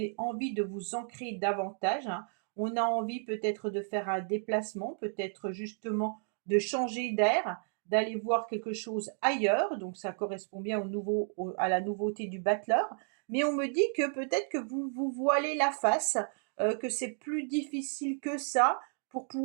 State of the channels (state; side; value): silent; left; 56 dB below the other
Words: envie de vous ancrer davantage, hein. On a envie peut-être de faire un déplacement, peut-être justement de changer d'air, d'aller voir quelque chose ailleurs. Donc ça correspond bien à la nouveauté du battleur. Mais on me dit que peut-être que vous vous voilez la face, que c'est plus difficile que ça pour